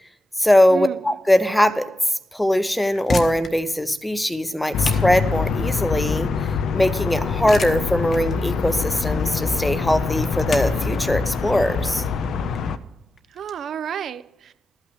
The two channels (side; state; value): both; normal; correlation 0.90